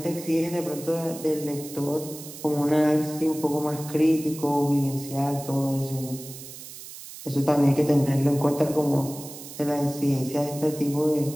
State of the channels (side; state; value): right; noise; hiss, 14 dB below the sound